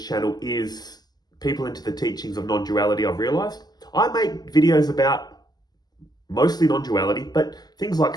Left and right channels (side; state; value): right; late; 0.20 ms